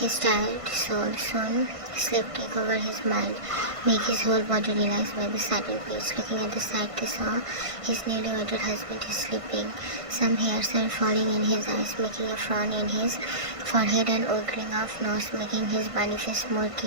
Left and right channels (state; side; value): late; left; 1.5 ms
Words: tired soul. Soon sleep take over his mind, make his whole body relaxed by the sudden peace. Looking at the sight, they saw his newly wedded husband is sleeping. Some hairs were falling in his eyes, making a frown in his forehead and ogling off nose, making his bunny face more